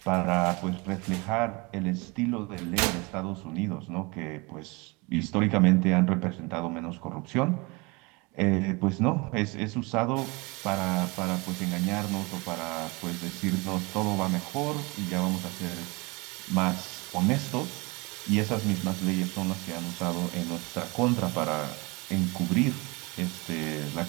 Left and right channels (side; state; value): left; quieter; 26.4 dB